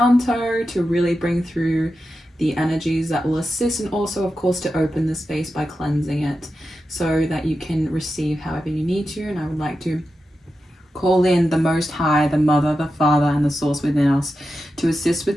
to really bring through the energies that will assist, and also, of course, to open the space by cleansing it so that you can receive however you need to. And I would like to call in the Most High, the Mother, the Father, and the Source within us to assist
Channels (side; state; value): both; normal; correlation 0.90